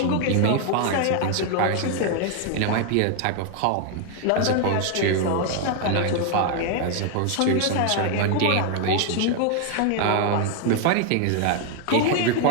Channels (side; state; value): both; different; correlation 0.00